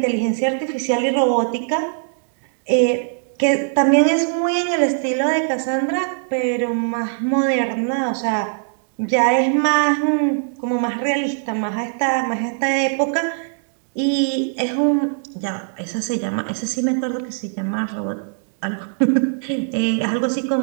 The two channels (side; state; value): left; silent; 65 dB below the other